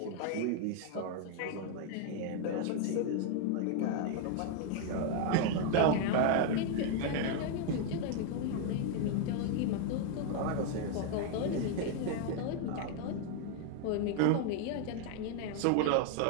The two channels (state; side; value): different; both; correlation 0.00